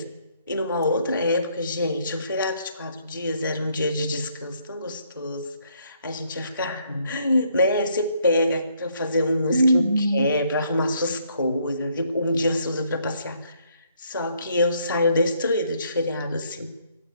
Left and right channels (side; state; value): both; inverted; correlation -0.69